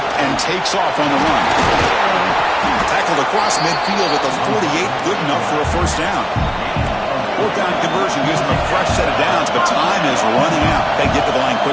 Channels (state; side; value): identical; both; correlation 1.00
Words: and takes off on the run. Tackled across midfield at the 48. Good enough for a first down. 4th down conversion gives them a fresh set of downs, but time is running out. They get to the line